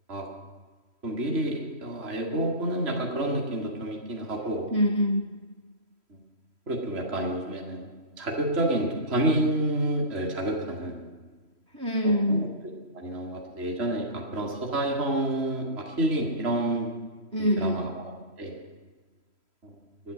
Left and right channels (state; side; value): late; left; 3.0 ms